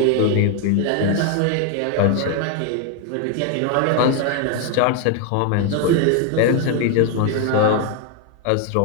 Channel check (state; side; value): different; both; correlation 0.01